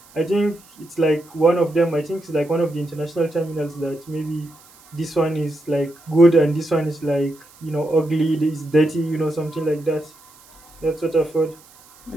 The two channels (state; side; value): noise; right; hiss, 26 dB below the sound